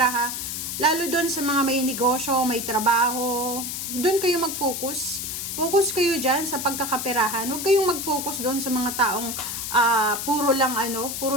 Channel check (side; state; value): left; noise; hiss, 5 dB below the sound